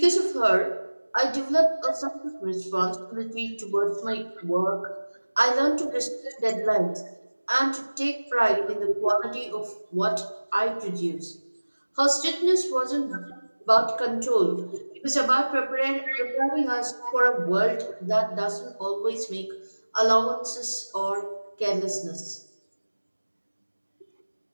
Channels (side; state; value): both; inverted; correlation -1.00